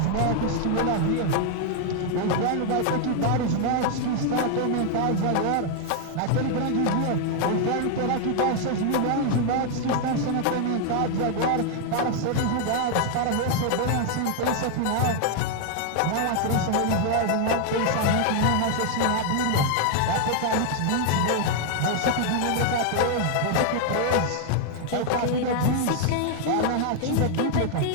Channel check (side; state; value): both; different; correlation 0.00